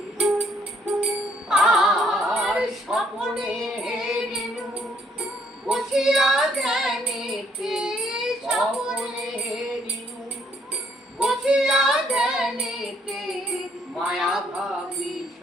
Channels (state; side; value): normal; both; correlation 0.67